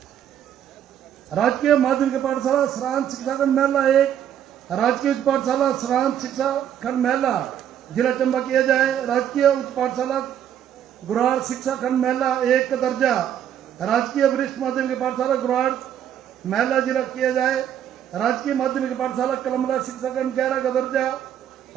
राजकीय माध्यमिक पाठशाला सरांत शिक्षा खंड मेला 1 राजकीय उच्च पाठशाला सरांत शिक्षा खंड मेला जिला चंबा किया जाए। राजकीय उच्च पाठशाला गुराड़ शिक्षा खंड मेला 1 का दर्जा राजकीय वरिष्ठ माध्यमिक पाठशाला गुराड़ मेला जिला किया जाए। राजकीय माध्यमिक पाठशाला कलमला शिक्षा खंड 11 का दर्जा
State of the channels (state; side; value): quieter; left; 9.9 dB